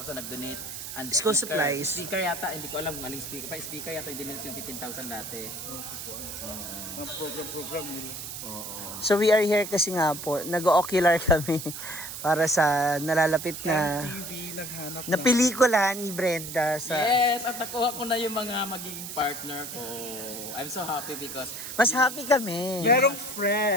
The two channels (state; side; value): noise; right; hiss, 8 dB below the sound